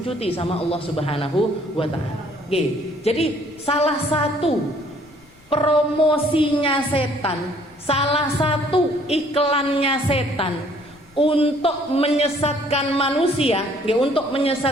sama Allah Subhanahu wa Ta'ala. Jadi salah satu promosinya setan, salah satu iklannya setan untuk menyesatkan manusia, untuk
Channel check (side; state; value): left; noise; rumble, 29 dB below the sound